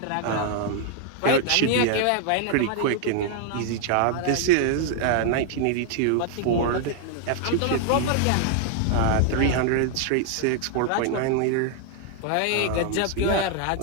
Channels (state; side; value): different; both; correlation 0.00